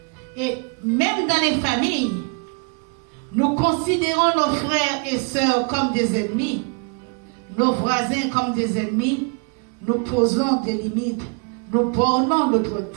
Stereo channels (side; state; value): left; quieter; 36.0 dB